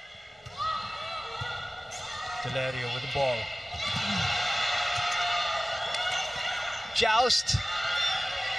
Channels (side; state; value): both; normal; correlation 0.97